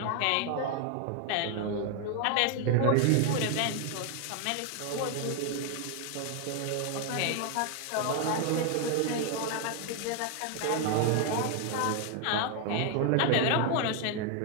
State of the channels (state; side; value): different; both; correlation 0.00